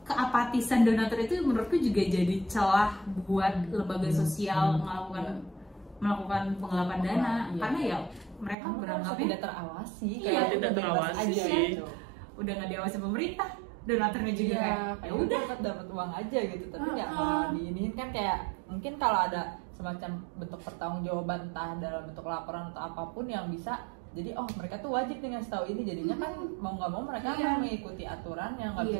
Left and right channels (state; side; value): drops out; left; at 8.6 s